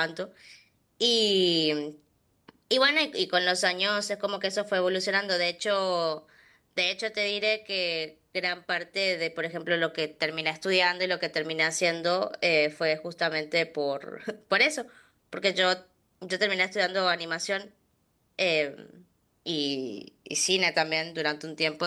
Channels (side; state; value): both; identical; correlation 1.00